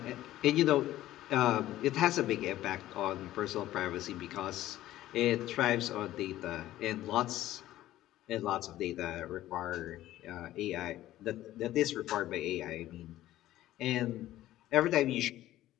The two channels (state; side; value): quieter; right; 14.5 dB